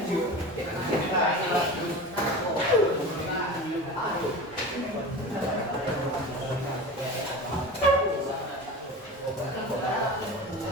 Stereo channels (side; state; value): both; normal; correlation 0.31